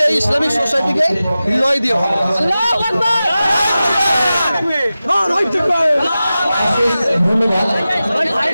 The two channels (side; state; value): both; inverted; correlation -0.95